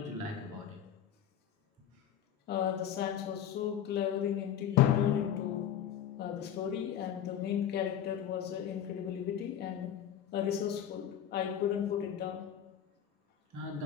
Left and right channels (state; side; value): quieter; right; 9.8 dB